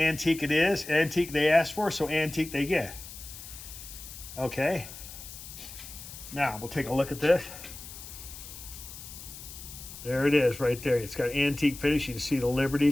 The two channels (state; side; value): noise; left; hiss, 13 dB below the sound